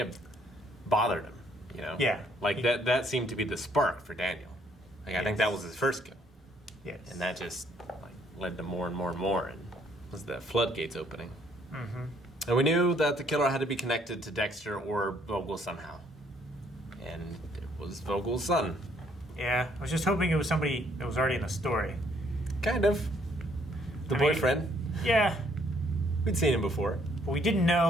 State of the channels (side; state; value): both; normal; correlation 0.67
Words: bothered him, you know? Yeah. Like, that seemed to be the spark for Daniel. Like, I think that was his first kill. Yes. And that just, like, led to more and more and more, and was the floodgates opening. Mm-hmm. And we knew that the killer had to be connected to Dexter or Vogel somehow. And it was Vogel's son. Yeah, I was just hoping it was somebody that was already in the story. Kind of. The boyfriend. Yeah, We'd seen him before. but we didn't